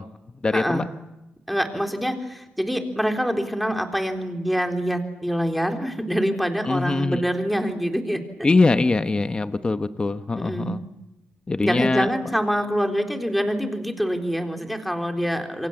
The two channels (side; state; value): both; normal; correlation 0.95